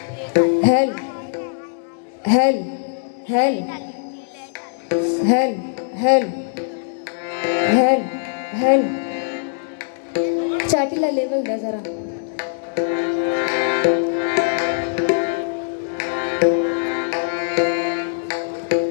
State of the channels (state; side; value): silent; right; digital silence